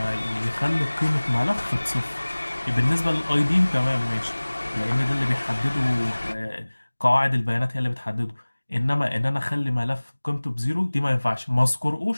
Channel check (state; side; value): inverted; both; correlation -1.00